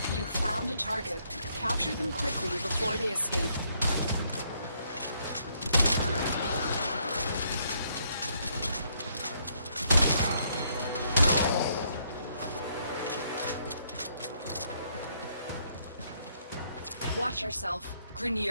You found a target. Capture them quickly before they escape. Watch yourself.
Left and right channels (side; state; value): both; inverted; correlation -0.71